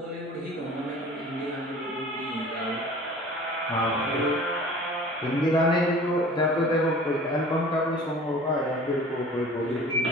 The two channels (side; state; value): both; normal; correlation 0.44